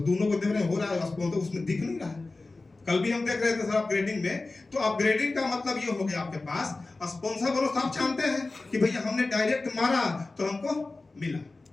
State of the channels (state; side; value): quieter; right; 3.4 dB